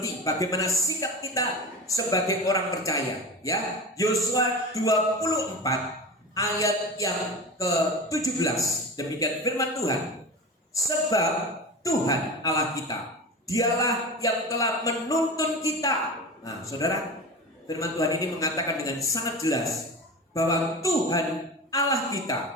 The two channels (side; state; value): both; normal; correlation 0.29